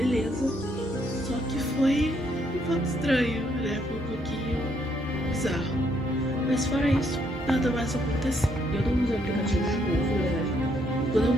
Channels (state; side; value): normal; both; correlation 0.72